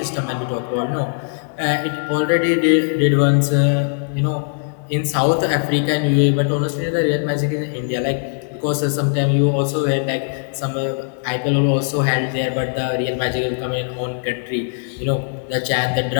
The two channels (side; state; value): right; silent; 66 dB below the other